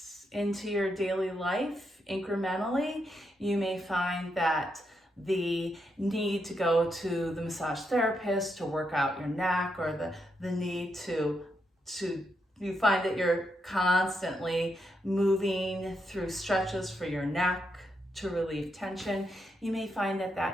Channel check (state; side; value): normal; both; correlation 0.81